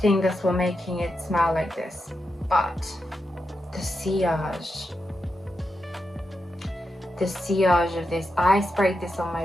think that's what making it smell like this. But the sillage of this, I sprayed this on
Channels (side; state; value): both; normal; correlation 0.87